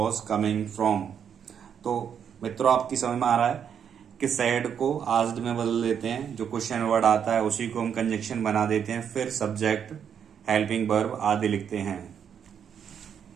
coming from। तो मित्रों आपकी समझ में आ रहा है कि सैड को आस्क्ड में बदल देते हैं, जो क्वेश्चन वर्ड आता है उसी को हम कंजक्शन बना देते हैं, फिर सब्जेक्ट हेल्पिंग वर्ब आदि लिखते हैं।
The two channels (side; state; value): left; quieter; 8.0 dB